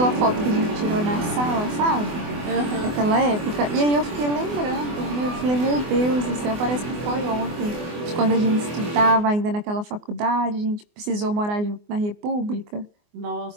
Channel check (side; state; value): left; late; 24 ms